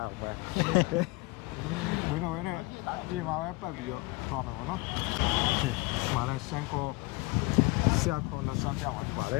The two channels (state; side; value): quieter; right; 24.1 dB